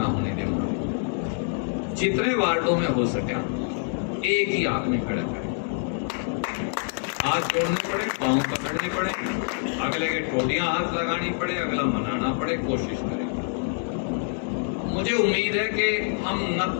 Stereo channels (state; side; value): silent; right; 61 dB below the other